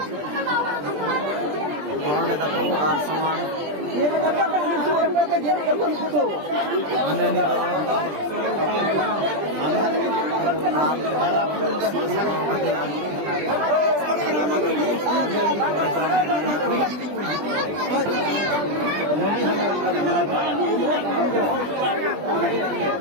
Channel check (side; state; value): left; late; 20 ms